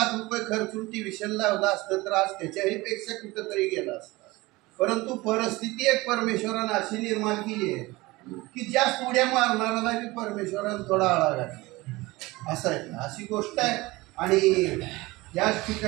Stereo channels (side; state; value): left; quieter; 21.2 dB